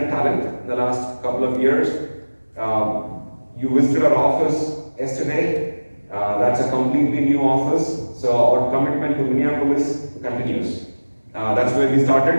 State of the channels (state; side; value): inverted; both; correlation -1.00